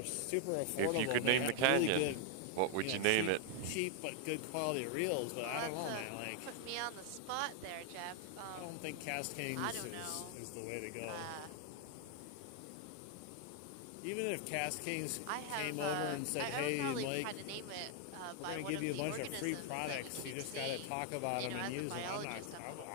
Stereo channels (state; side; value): different; both; correlation 0.00